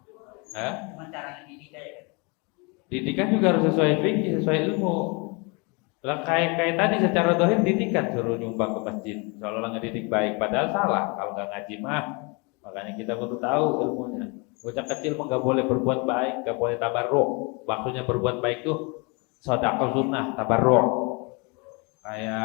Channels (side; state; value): right; quieter; 30.5 dB